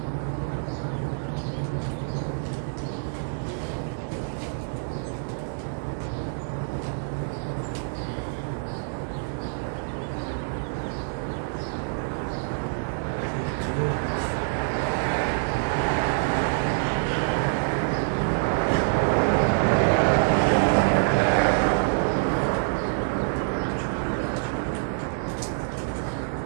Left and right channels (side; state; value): left; silent; digital silence